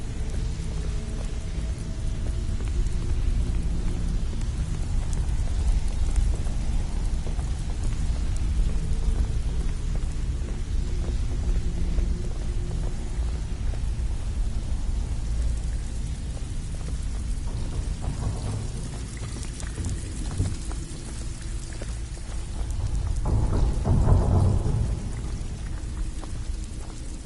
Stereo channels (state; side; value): identical; both; correlation 1.00